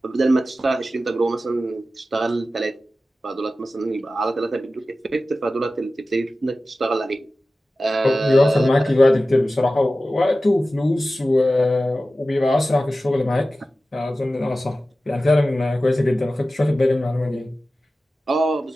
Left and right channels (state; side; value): normal; both; correlation 0.95